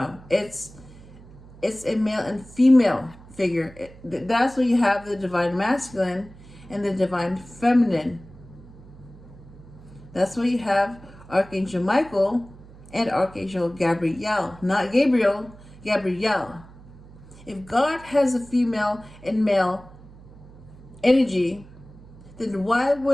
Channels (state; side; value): noise; right; hum, 20 dB below the sound